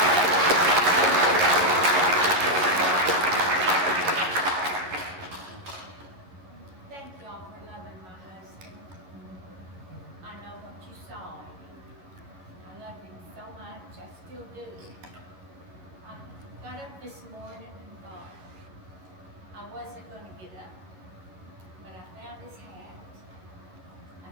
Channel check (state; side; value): late; left; 11 ms